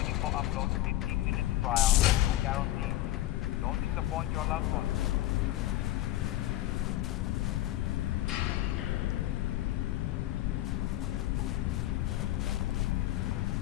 for upload 15 minutes prior or no guarantee. Don't disappoint your loved ones.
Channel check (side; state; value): right; quieter; 15.1 dB